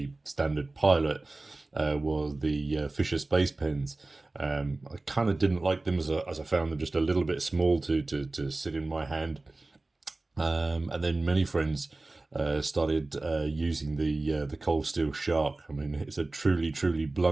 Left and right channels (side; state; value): left; quieter; 3.1 dB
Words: standard pilot was the Fisher Space pens. I kind of didn't like them as I found them just a little bit small to sit in my hand. And then many friends started using the Cold Steel Shark. I mean, it's a truly